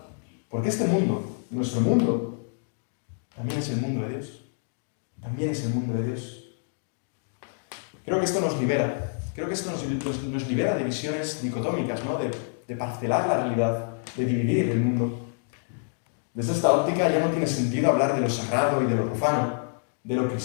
Porque este mundo, nuestro mundo, también es el mundo de Dios. También es el mundo de Dios. Creo que esto nos libera. Creo que esto nos libera de visiones dicotómicas, ¿no?, de parcelar la realidad, de dividir el mundo. Desde esta óptica ya no tiene sentido hablar de lo sagrado y de lo profano, de lo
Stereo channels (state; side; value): silent; right; digital silence